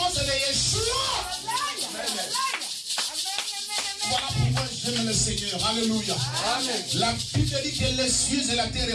de Yeshua. Voilà pourquoi j'aime le Seigneur. Alléluia. Amen. La Bible dit que les cieux et la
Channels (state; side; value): identical; both; correlation 1.00